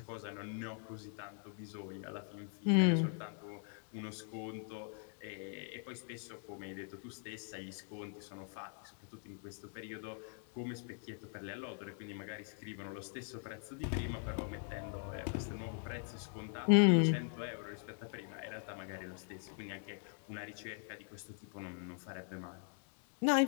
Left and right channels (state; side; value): silent; right; 50 dB below the other